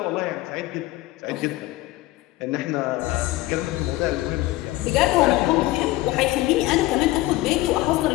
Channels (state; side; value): quieter; right; 18.0 dB